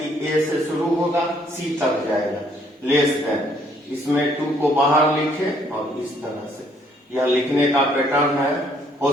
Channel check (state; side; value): normal; both; correlation 0.66